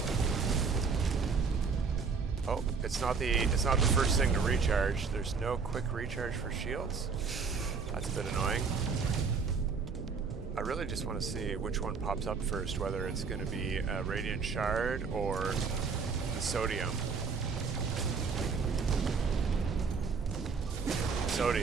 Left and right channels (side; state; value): left; quieter; 5.3 dB